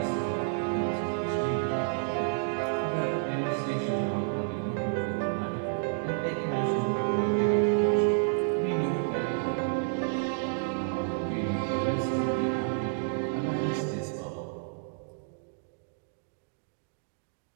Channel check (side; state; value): left; silent; digital silence